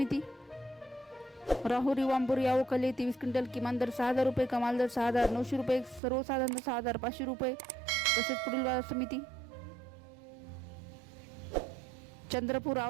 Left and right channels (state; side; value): drops out; left; at 6.0 s